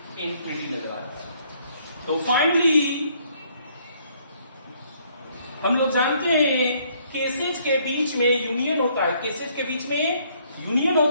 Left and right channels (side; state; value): both; inverted; correlation -0.66